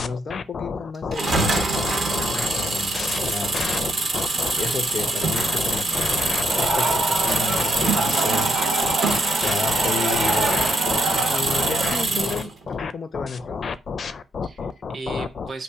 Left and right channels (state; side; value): normal; both; correlation 0.76